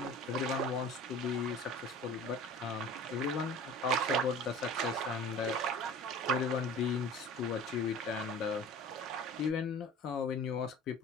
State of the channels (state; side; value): normal; both; correlation 0.40